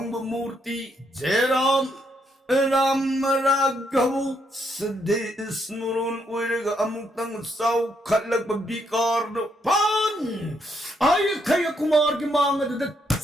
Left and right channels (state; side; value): normal; both; correlation 0.76